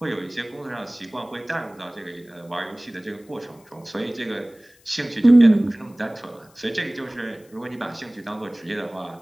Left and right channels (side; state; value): left; noise; hiss, 29 dB below the sound